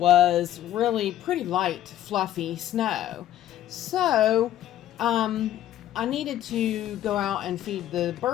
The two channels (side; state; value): right; quieter; 12.3 dB